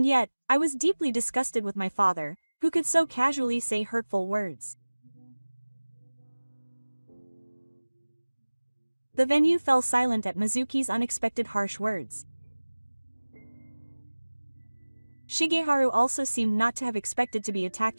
yet, I was deeply disgusted with my father, who could so casually say hurtful words. The venue fell silent at Mizuki's unexpected harsh words. Shigeharu also seemed not to have expected to be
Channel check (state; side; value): inverted; both; correlation -1.00